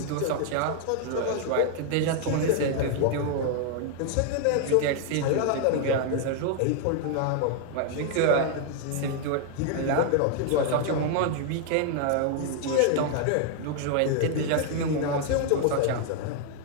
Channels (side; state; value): both; different; correlation 0.00